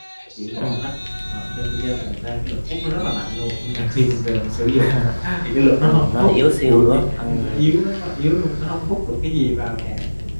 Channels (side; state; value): both; inverted; correlation -1.00